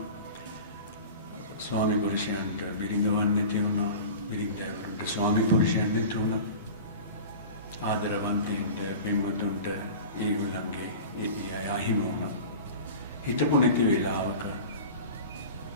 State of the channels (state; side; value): inverted; both; correlation -0.35